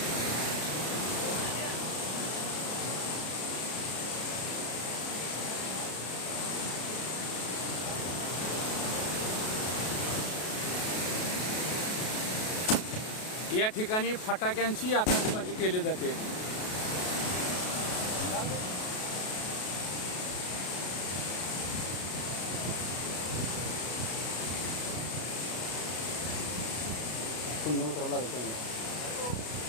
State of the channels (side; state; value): right; late; 33 ms